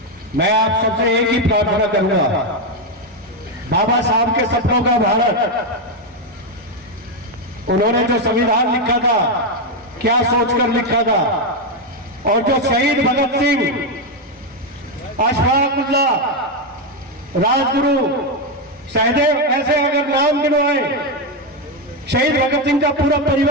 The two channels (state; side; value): normal; both; correlation 0.06